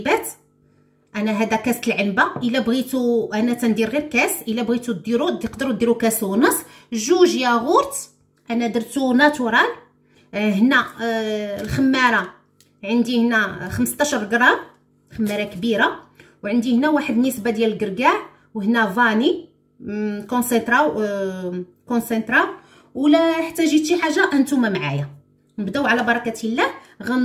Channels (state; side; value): identical; both; correlation 1.00